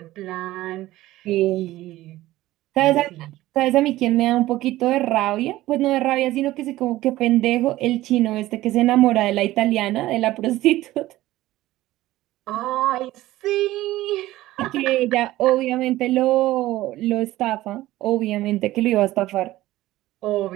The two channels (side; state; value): left; quieter; 16.3 dB